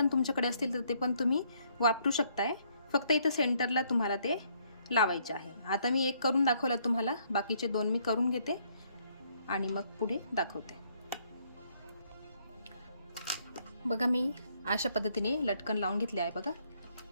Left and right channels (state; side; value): inverted; both; correlation -0.68